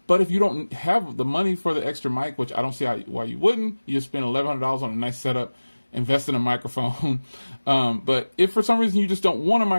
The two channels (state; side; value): inverted; both; correlation -1.00